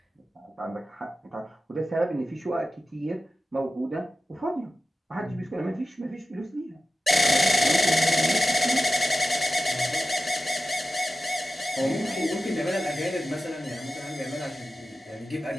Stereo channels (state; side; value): normal; both; correlation 0.94